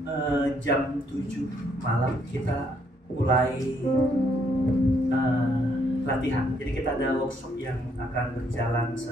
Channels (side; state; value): both; normal; correlation 0.71